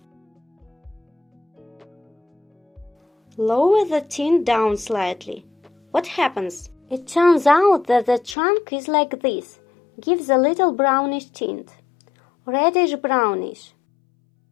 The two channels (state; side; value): drops out; right; at 8.3 s